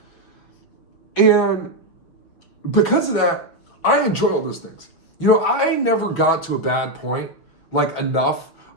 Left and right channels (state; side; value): late; right; 6.0 ms